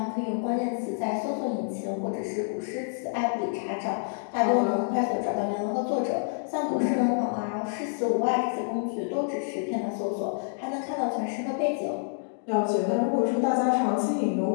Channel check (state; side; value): silent; right; digital silence